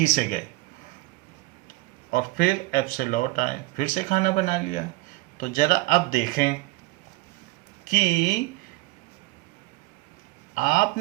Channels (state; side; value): quieter; left; 20.8 dB